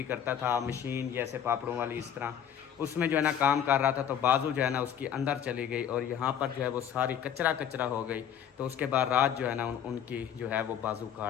करता था, मशीन जैसे पापड़ों वाली इस तरह, उसमें जो है ना काम कर रहा था, तो बाजू जो है ना उसकी अंदर चली गई और यहाँ पर जो है वो सारी कचरा कचरा हो गई। तो उसके बाद रात जो है ना उनकी जो है वो बाजू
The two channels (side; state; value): right; quieter; 9.2 dB